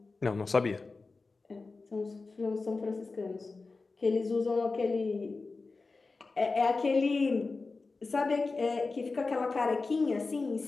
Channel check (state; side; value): quieter; right; 3.9 dB